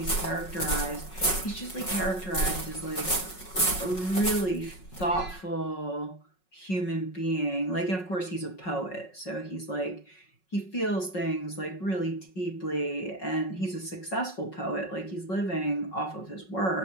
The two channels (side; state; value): right; late; 5.4 ms